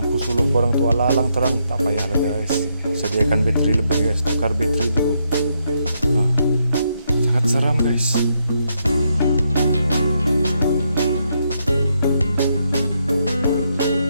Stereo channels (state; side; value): inverted; both; correlation -0.78